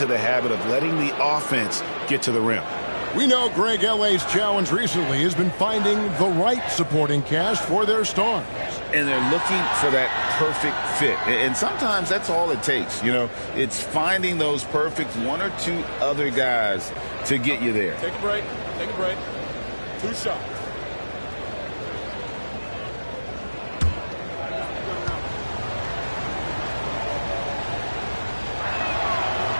the habit of letting the offense get to the rim. We know Greg, LA's challenge recently has been finding the right supporting cast for their stars. And they're looking for that perfect fit. And sometimes that's all it takes. You know, it's finding those perfect 1 or 2 other guys to get you there. Take a break. Take a break. 2 shots.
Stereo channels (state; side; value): inverted; both; correlation -1.00